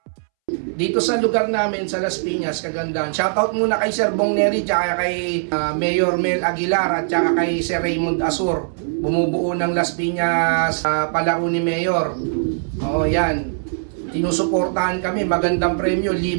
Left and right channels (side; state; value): left; silent; 65 dB below the other